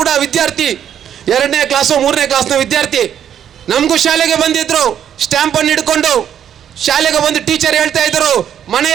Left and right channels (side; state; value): left; quieter; 9.5 dB